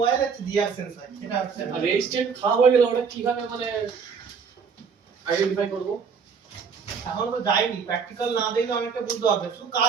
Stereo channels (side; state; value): left; quieter; 6.0 dB